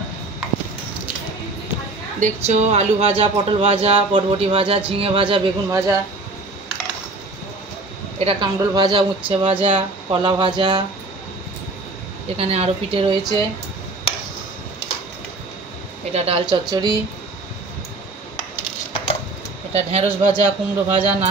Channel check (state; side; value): quieter; left; 3.2 dB